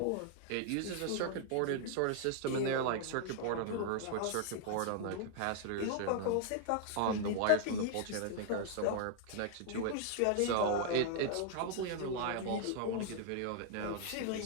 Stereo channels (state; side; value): different; both; correlation 0.00